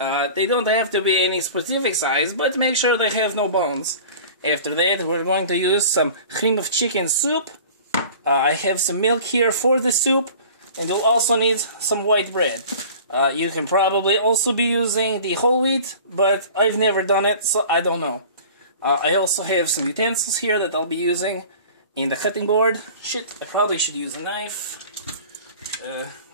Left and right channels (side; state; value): both; inverted; correlation -0.42